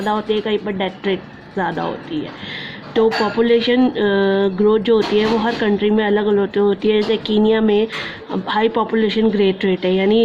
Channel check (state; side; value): identical; both; correlation 1.00